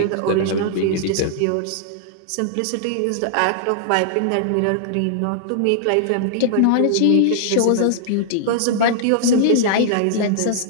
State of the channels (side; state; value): both; different; correlation -0.01